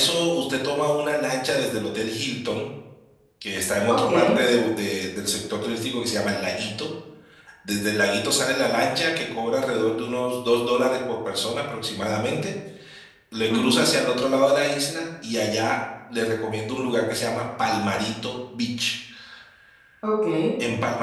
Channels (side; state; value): both; identical; correlation 1.00